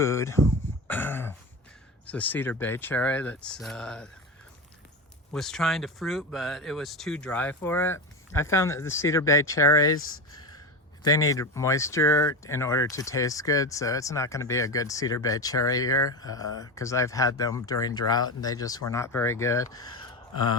it's a cedar bay cherry that's was trying to fruit, but it was too dry for it. I found that the cedar bay cherries, they need moisture in order to taste good, so it's not going to be a good cedar bay cherry here because I've had them during drought and they just were not very good.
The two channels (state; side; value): normal; both; correlation 0.22